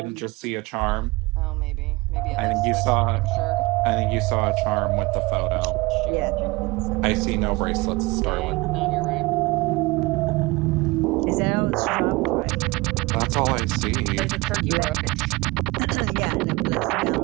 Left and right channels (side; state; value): left; quieter; 23.4 dB